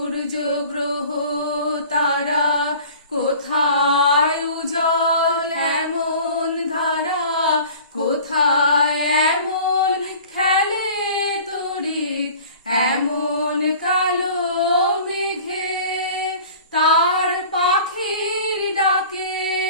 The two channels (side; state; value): both; inverted; correlation -0.44